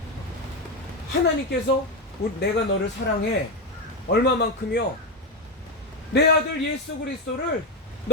하나님께서 내가 너를 사랑해 얼마만큼요? 내 아들 예수 그리스도를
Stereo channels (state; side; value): normal; both; correlation 0.09